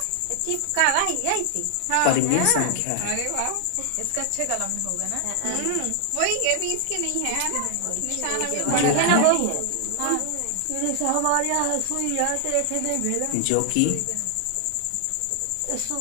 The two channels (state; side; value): different; both; correlation 0.00